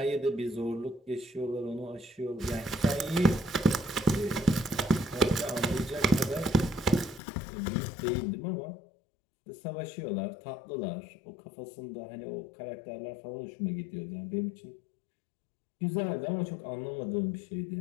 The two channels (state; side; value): drops out; right; at 7.2 s